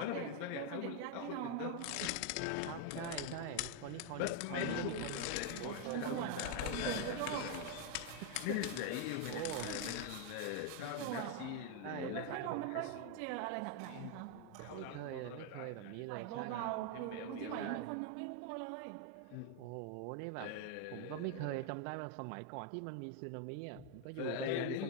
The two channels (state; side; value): different; both; correlation 0.01